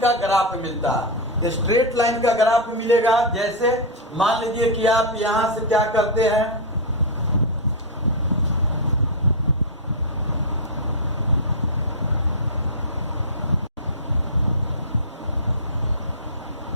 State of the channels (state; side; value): normal; both; correlation -0.03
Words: ग्राफ मिलता है। स्ट्रेट लाइन का ग्राफ मिलेगा, जैसे मान लीजिए कि आप यहां से क्या करते हैं,